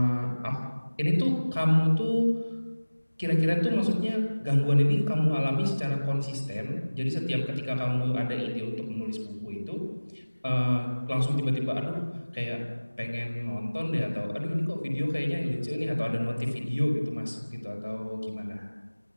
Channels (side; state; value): both; inverted; correlation -1.00